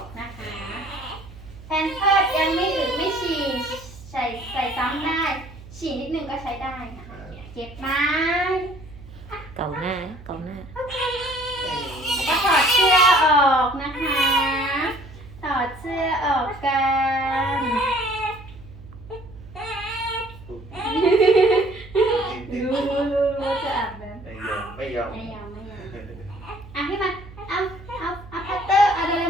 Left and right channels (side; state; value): right; noise; hum, 17 dB below the sound